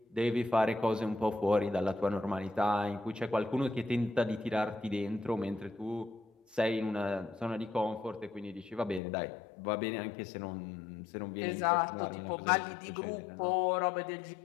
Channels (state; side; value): drops out; right; at 9.0 s